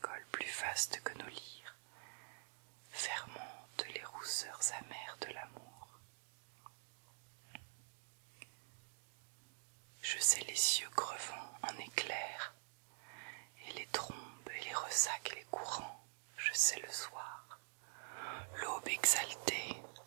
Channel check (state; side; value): silent; left; digital silence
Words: plus vaste que nos lyres, fermentent les rousseurs amères de l'amour. Je sais les cieux crevant en éclairs, et les trombes et les ressacs et les courants, je sais le soir, l'aube exaltée,